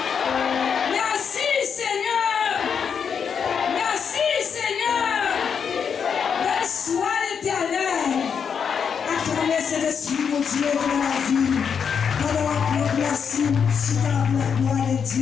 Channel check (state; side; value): quieter; right; 6.9 dB